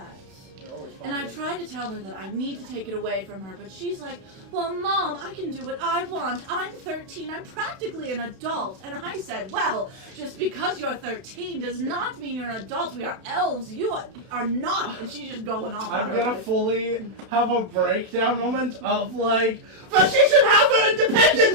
And I tried to tell her that I need to take it away from her, but she's like, well, Mom, I can do what I want. I'm 13. I'm practically an adult. And I said, well, just because you're 13 does not mean you're an adult. We are elves. You are not. And she's just going off on I'm her gonna life. fully have a breakdown moment of like, but she should have her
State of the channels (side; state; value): left; late; 32 ms